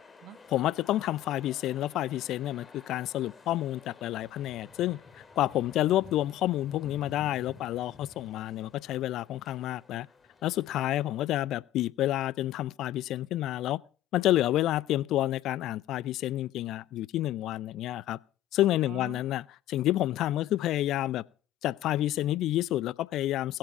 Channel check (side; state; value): right; quieter; 13.5 dB